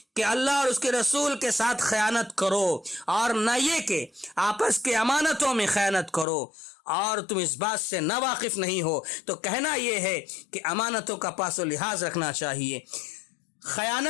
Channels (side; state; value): right; drops out; at 6.2 s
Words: کہ اللہ اور اس کے رسول کے ساتھ خیانت کرو، اور نہ یہ کہ آپس کے امانتوں میں خیانت کرو اور تم اس بات سے نا واقف نہیں ہو۔ تو کہنا یہ ہے کہ امانتوں کا پاس و لحاظ رکھنا چاہیے۔